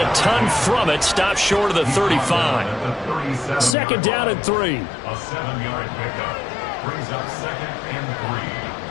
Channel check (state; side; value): drops out; right; at 3.8 s